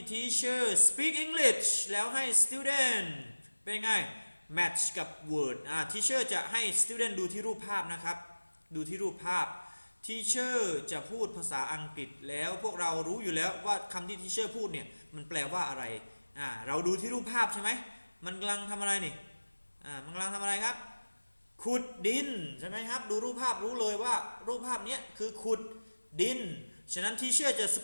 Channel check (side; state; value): both; inverted; correlation -1.00